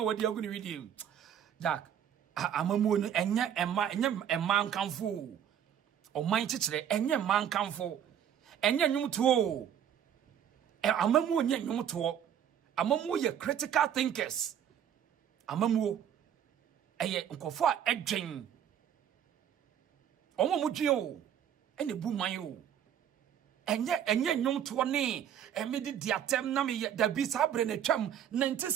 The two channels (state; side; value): quieter; left; 9.3 dB